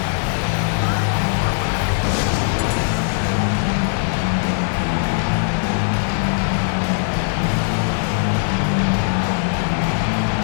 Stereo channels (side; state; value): right; silent; digital silence